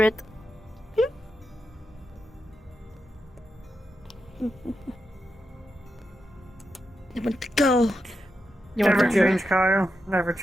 I want to go. You want Never to go? change, Kyle. Never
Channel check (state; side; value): normal; both; correlation 0.87